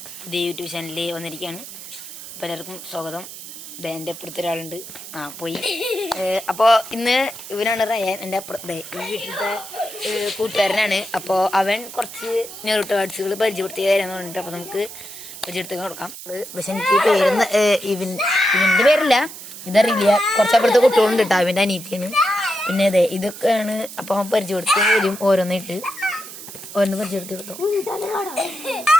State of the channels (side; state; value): right; noise; hiss, 13 dB below the sound